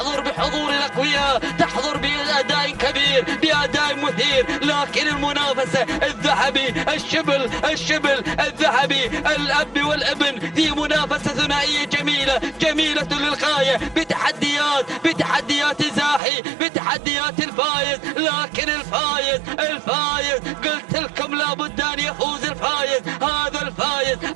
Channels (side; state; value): left; drops out; at 16.2 s